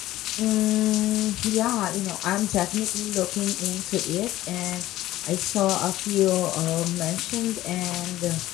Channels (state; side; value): quieter; right; 15.3 dB